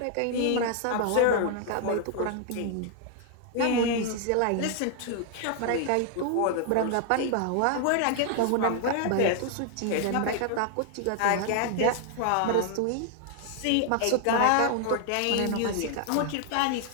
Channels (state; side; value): different; both; correlation 0.00